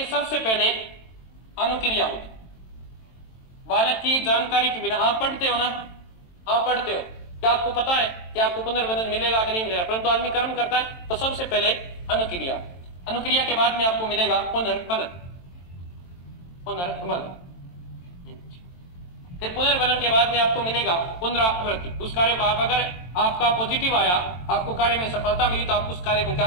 सबसे पहले अनुक्रिया होगी बालक की जानकारी के बिना। आप पढ़ते हो ना, आप पढ़ते हो, क्या आपको पता है कि आपको पुनर्वनन मिलेगा कि नहीं मिलेगा, परंतु आदमी कर्म करता है। तो सबसे पहले अनुक्रिया, अनुक्रिया के बाद में आपको मिलेगा पुनर्वनन, पुनर्वनन, फिर पुनर्वनन के बाद में आपको मिलेगा पुनरावृत्ति। उस कार्य को आप अगर आपका पॉजिटिव आया, आपको कार्य में सफलता मिली, तो आप उस कार्य को क्या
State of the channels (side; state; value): right; late; 23 ms